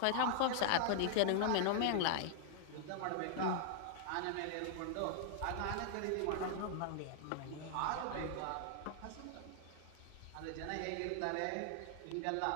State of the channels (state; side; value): different; both; correlation 0.00